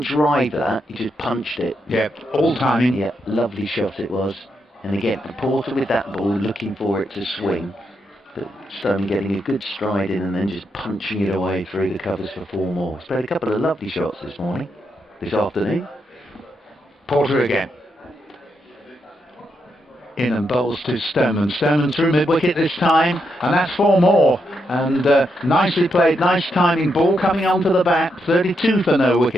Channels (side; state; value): both; normal; correlation 0.81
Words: drive that, he just punched it. Yeah, all timing. Yeah, lovely shot it was. And again, Porter with that ball, looking for it to swing. But Stoneman getting a good stride in and then just punching it away through the covers for 4 more. He's played a couple of lovely shots this afternoon. Porter again. In and bowls to Stoneman. Stoneman through mid-wicket this time, and that's 4 more. And nicely played, nice timing. Ball coming onto the bat, 32 for no